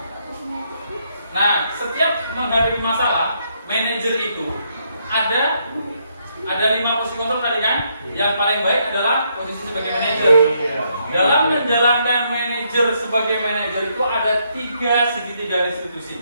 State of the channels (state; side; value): inverted; both; correlation -0.75